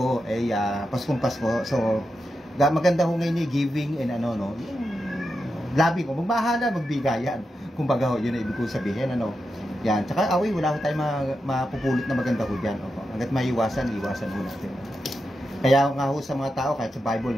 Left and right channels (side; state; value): both; normal; correlation 0.88